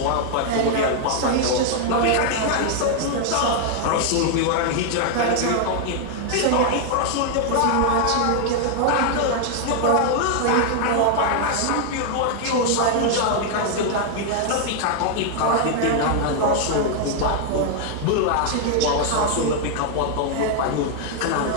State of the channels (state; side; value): different; both; correlation 0.00